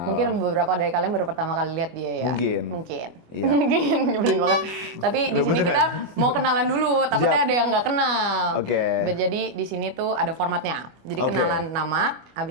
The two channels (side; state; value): left; late; 24 ms